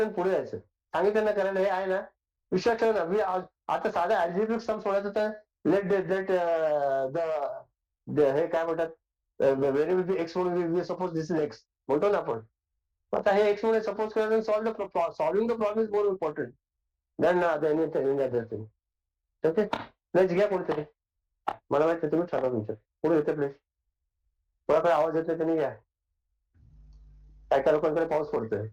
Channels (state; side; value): identical; both; correlation 1.00